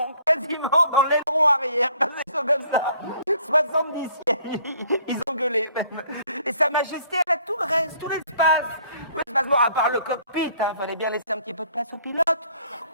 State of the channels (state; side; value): inverted; both; correlation -0.59